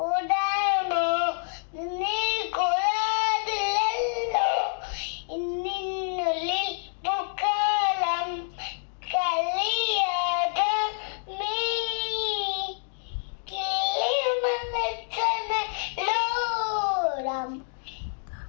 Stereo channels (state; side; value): silent; right; digital silence